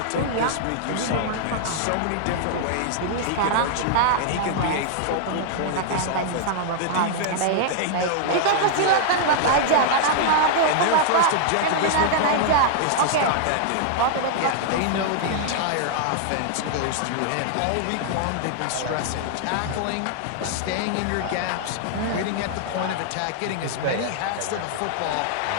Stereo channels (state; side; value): different; both; correlation -0.01